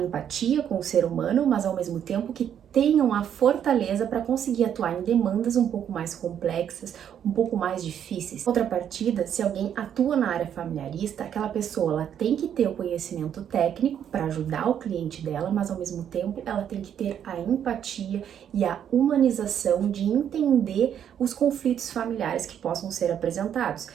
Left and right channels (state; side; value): quieter; left; 9.2 dB